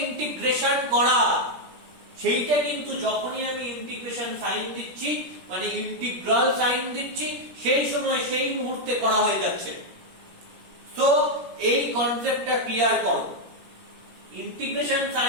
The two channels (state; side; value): late; left; 17 ms